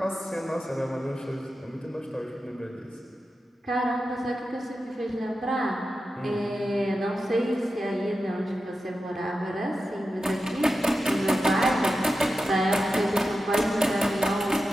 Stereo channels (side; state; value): both; normal; correlation 0.91